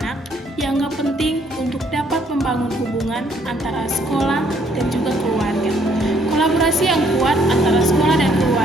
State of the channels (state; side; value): normal; both; correlation 0.66